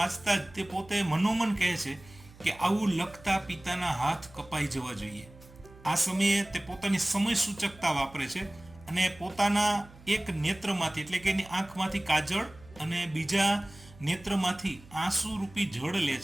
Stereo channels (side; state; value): right; noise; hum, 22 dB below the sound